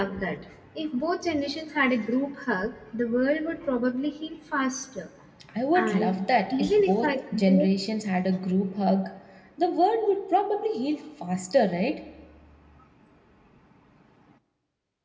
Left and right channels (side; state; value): both; identical; correlation 1.00